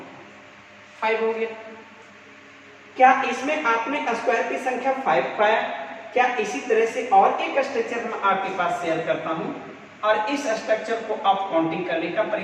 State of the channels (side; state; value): both; identical; correlation 1.00